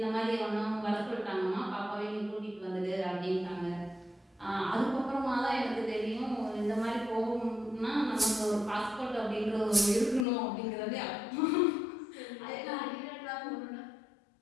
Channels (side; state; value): right; drops out; at 10.2 s